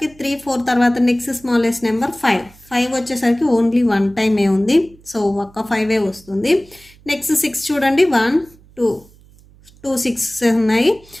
3, 4 తర్వాత నెక్స్ట్ స్మాలెస్ట్ నెంబర్ 5. 5 వచ్చేసరికి ఓన్లీ 1 టైమే ఉంది, సో ఒక్క 5 వస్తుంది. నెక్స్ట్ 6 చూడండి, 1, 2, 2 6 ఉన్నాయి,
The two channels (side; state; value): right; noise; hum, 26 dB below the sound